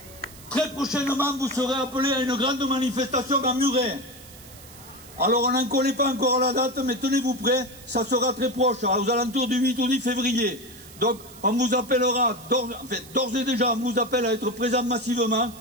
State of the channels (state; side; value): noise; right; hiss, 20 dB below the sound